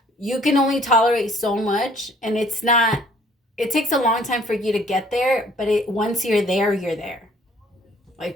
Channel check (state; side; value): normal; both; correlation 0.58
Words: you can only tolerate so much, and it's not, it takes a long time for you to get there, but once you're there, you're there.